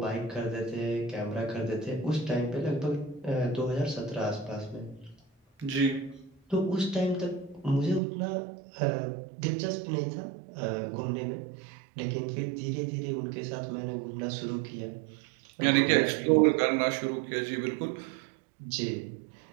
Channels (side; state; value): left; drops out; at 8.0 s